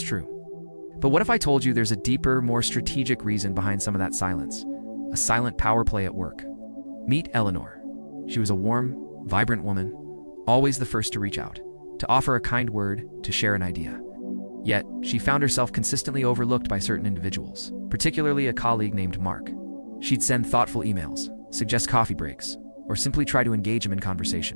But what if I told you there's a deeper, more strategic reason behind some of that silence? A silent power play at work. Meet Eleanor. She was a warm, vibrant woman, always the first to reach out, to offer a kind word, to share an idea. Yet, she found herself consistently overlooked by certain individuals, particularly a colleague named Mark. She'd send thoughtful emails, suggest coffee breaks, or simply try to engage him in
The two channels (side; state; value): both; inverted; correlation -1.00